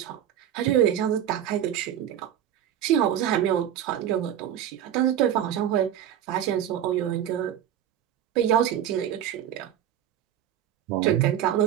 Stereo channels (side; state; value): left; quieter; 10.4 dB